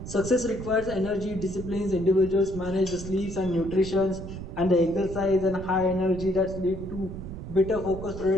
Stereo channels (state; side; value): noise; right; rumble, 10 dB below the sound